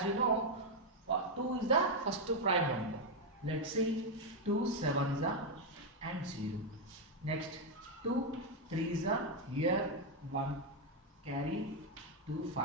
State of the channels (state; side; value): normal; both; correlation 0.01